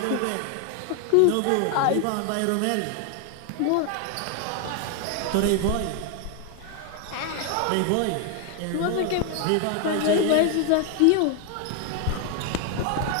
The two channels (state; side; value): different; both; correlation 0.01